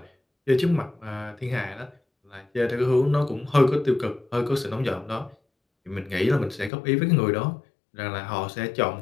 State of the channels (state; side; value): drops out; right; at 6.7 s